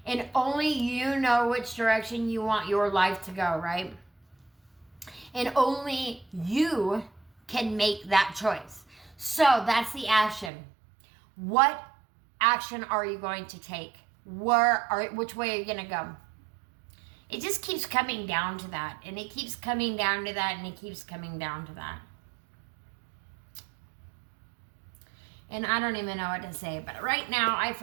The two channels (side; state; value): left; drops out; at 10.5 s